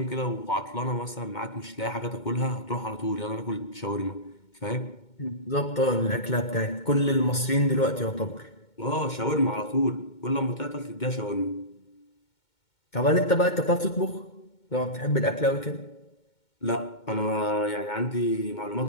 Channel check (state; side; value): late; right; 2.2 ms